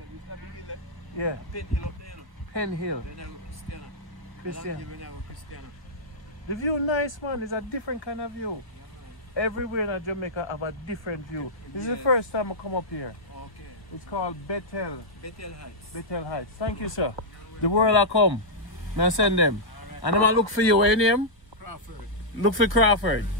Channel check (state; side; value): late; right; 1.3 ms